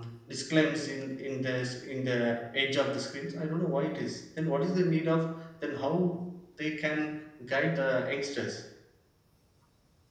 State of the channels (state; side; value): identical; both; correlation 1.00